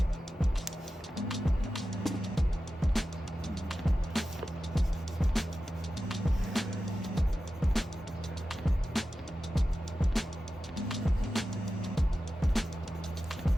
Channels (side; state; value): both; normal; correlation 0.93